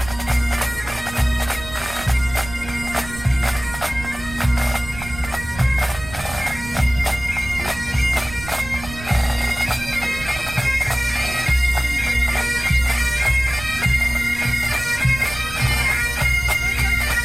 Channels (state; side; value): noise; right; rumble, 14 dB below the sound